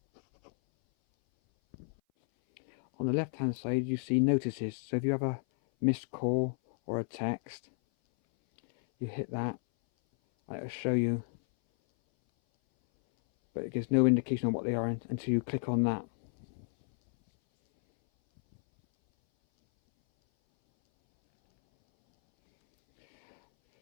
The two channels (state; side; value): silent; right; 57 dB below the other